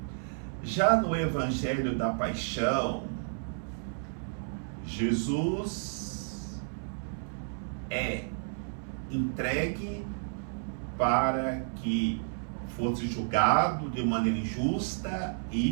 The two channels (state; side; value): silent; left; 57 dB below the other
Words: Já no Evangelho da Paixão, Jesus é entregue para que fosse julgado de maneira injusta